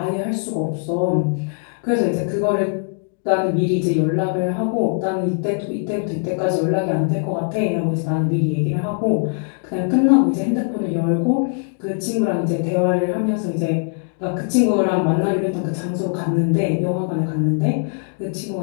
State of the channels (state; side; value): silent; right; 59 dB below the other